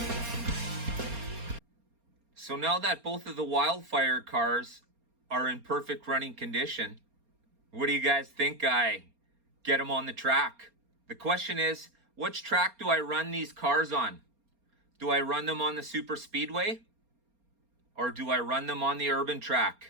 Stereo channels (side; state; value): left; late; 4.3 ms